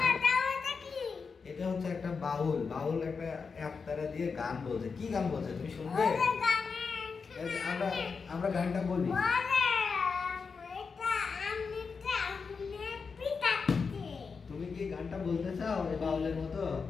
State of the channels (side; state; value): right; quieter; 5.2 dB